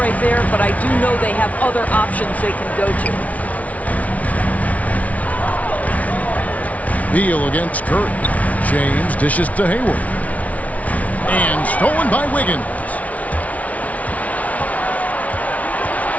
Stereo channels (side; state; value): right; late; 0.069 ms